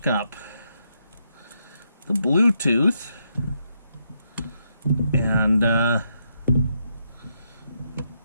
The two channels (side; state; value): both; inverted; correlation -0.79